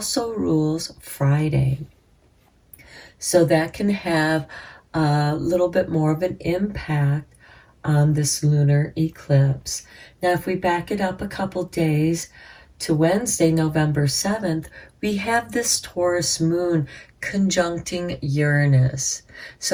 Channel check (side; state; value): both; identical; correlation 1.00